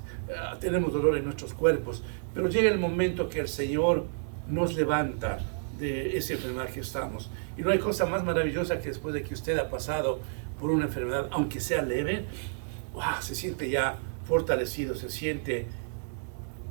tenemos dolor en nuestros cuerpos, pero llega el momento que el Señor nos levanta de esa enfermedad que estamos. Y no hay cosa más maravillosa que después de que usted ha pasado por una enfermedad, aunque sea leve, ¡wow!, se siente ya fortalecido, se siente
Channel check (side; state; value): left; silent; digital silence